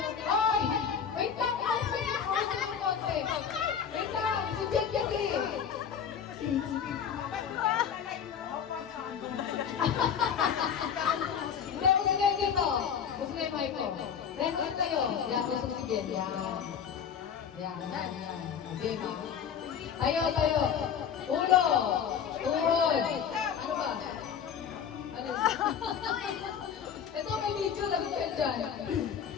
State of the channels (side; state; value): right; quieter; 7.7 dB